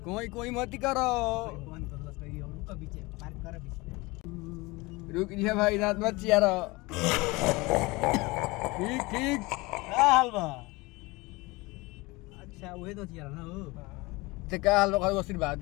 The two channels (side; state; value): right; quieter; 23.4 dB